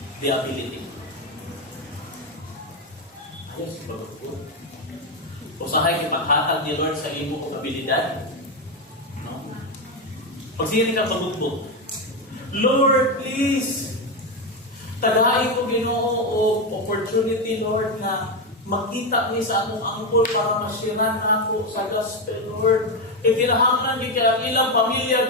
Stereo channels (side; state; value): both; normal; correlation 0.09